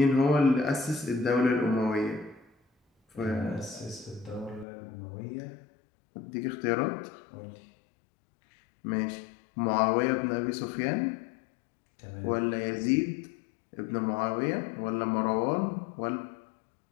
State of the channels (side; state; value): right; drops out; at 4.7 s